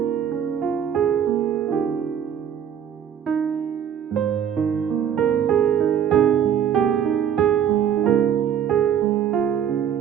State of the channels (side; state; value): left; quieter; 8.9 dB